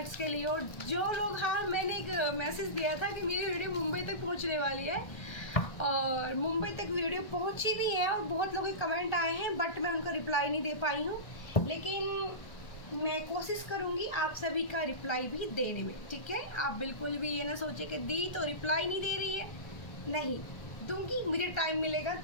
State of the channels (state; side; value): late; right; 1.4 ms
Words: के लिए। और जो लोग, हाँ मैंने एक मैसेज दिया था कि मेरी वीडियो मुंबई तक पहुंचने वाली है, और मुंबई तक वीडियो पहुंची भी है और बहुत लोगों के कमेंट आए हैं, बट मैं उनका रिप्लाई नहीं दे पाई हूँ। लेकिन मैं कोशिश करूँगी आप सभी का रिप्लाई भी देने में, ठीक है। आप बिल्कुल भी ये ना सोचे कि दी तो रिप्लाई नहीं दे रही है, नहीं दूंगी, मुझे टाइम मिलेगा